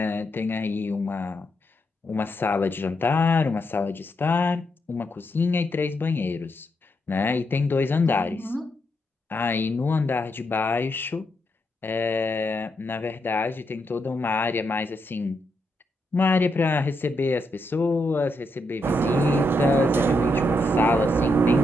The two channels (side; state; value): both; normal; correlation 0.81